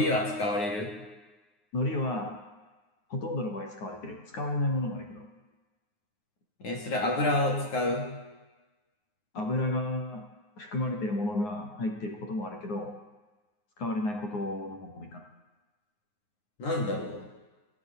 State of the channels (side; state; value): right; late; 9.6 ms